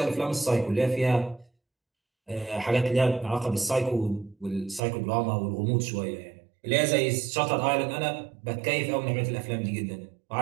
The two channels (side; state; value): left; drops out; at 4.8 s